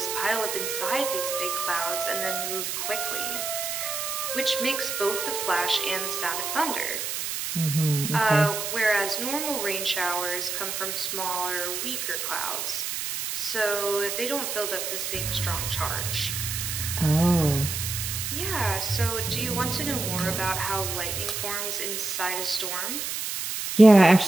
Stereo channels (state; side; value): noise; right; hiss, 3 dB below the sound